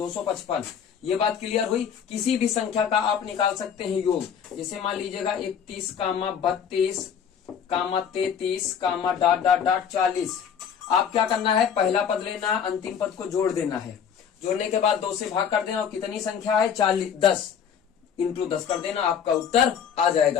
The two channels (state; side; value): quieter; right; 7.7 dB